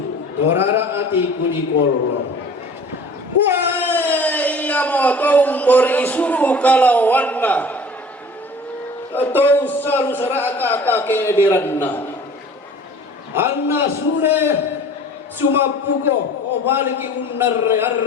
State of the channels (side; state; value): both; normal; correlation 0.45